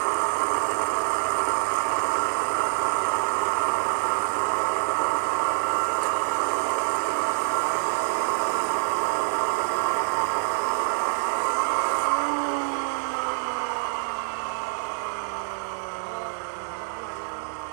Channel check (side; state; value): left; silent; digital silence